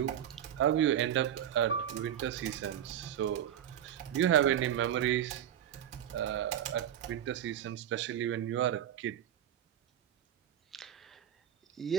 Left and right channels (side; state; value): left; quieter; 10.3 dB